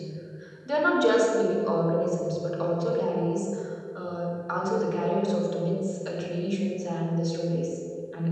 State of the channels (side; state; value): both; identical; correlation 1.00